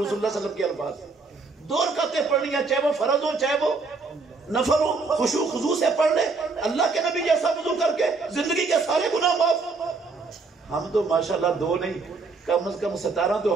صلی اللہ علیہ وسلم کے الفاظ، 2 رکعتیں پڑھنی ہیں، چاہے وہ فرض ہو چاہے وہ نفل ہو، خشوع خضوع سے پڑھ لے، اللہ کے نبی جیسا وضو کر کے زندگی کے سارے گناہ معاف۔ ہم تو ماشاءاللہ 2 نہیں، کم از کم 17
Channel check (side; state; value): left; quieter; 4.1 dB